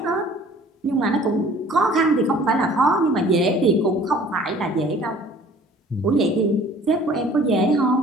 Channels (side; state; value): both; normal; correlation 0.51